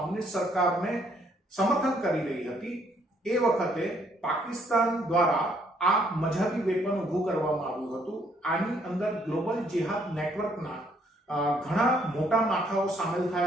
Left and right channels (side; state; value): both; normal; correlation 0.67